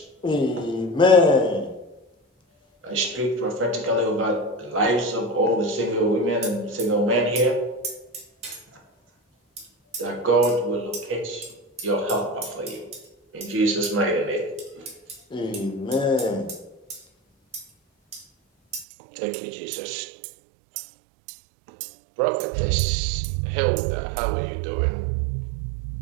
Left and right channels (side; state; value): left; drops out; at 18.9 s